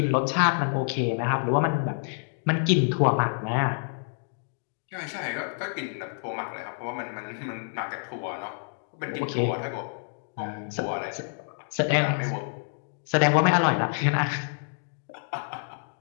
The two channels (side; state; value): right; silent; digital silence